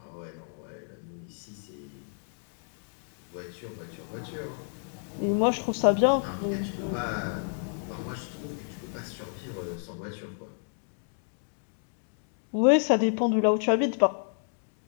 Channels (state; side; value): silent; right; 57 dB below the other